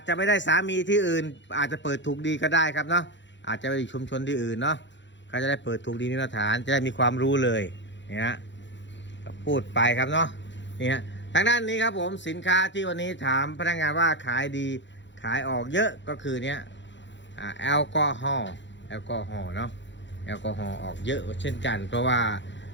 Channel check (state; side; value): late; right; 0.53 ms